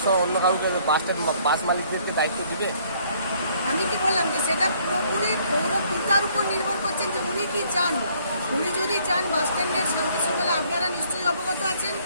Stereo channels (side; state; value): both; inverted; correlation -0.63